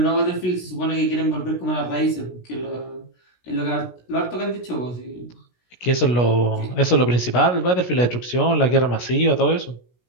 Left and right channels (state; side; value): late; right; 16 ms